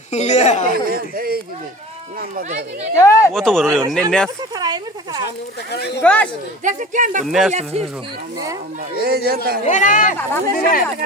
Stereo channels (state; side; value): normal; both; correlation 0.38